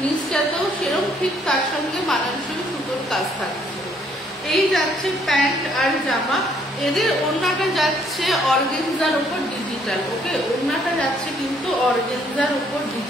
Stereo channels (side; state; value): both; normal; correlation 0.66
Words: নিচটাতেও সেরকম ঠিক তার সঙ্গে মানানসই সুতোর কাজ থাকছে। এই যাচ্ছে প্যান্ট আর জামা। এদের ওড়নাটা যাচ্ছে অর্গেনজার উপর ডিজিটাল, ওকে, ওড়নাটা যাচ্ছে কিন্তু অর্গেনজার উপর